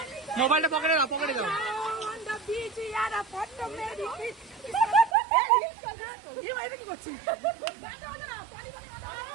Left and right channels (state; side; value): drops out; left; at 5.1 s